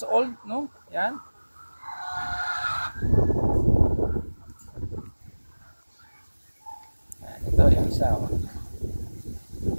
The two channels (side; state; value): both; inverted; correlation -1.00